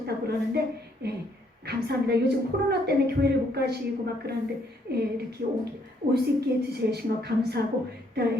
그러는데 예, 감사합니다. 요즘 코로나 때문에 교회를 못 가시고 막 그러는데 예, 이렇게 올 수 있게 해주신 것 감사하고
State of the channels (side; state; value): both; normal; correlation 0.69